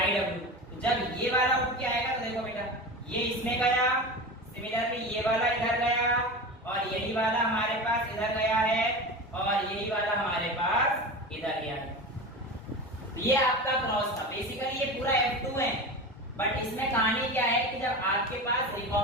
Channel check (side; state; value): both; normal; correlation 0.28